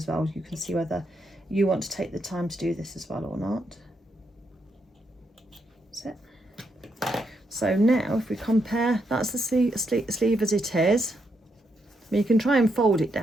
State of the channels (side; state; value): both; normal; correlation 0.79